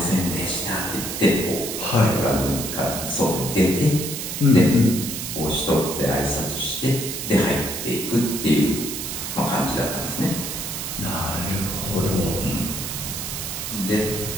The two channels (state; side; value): noise; right; hiss, 5 dB below the sound